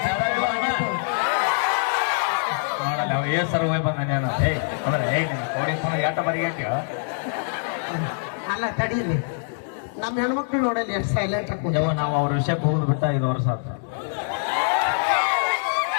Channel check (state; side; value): silent; right; digital silence